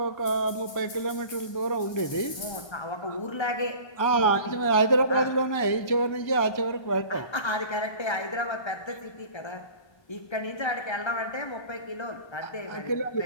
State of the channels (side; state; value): right; late; 1.3 ms